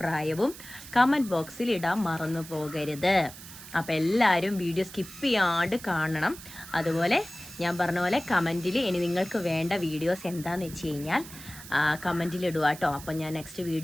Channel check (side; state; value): right; noise; hiss, 15 dB below the sound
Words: കമൻറ്റ് ബോക്സിൽ ഇടാൻ മറന്നു പോകരുത്. അപ്പോൾ എല്ലാവരും വീഡിയോ സ്കിപ്പ് ചെയ്യാണ്ട് കാണണം. അതുപോലെ ഞാൻ പറഞ്ഞ പോലെ കമൻറ്റിൽ ഇനി നിങ്ങൾക്ക് വേണ്ട വീഡിയോസ് എന്താണെന്ന് വെച്ച് കഴിഞ്ഞാൽ കമൻറ്റിൽ ഇടുക കേട്ടോ. അപ്പോൾ ഞാൻ നെക്സ്റ്റ്